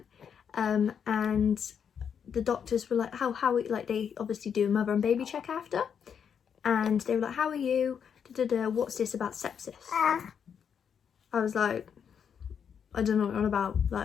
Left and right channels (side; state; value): right; quieter; 7.5 dB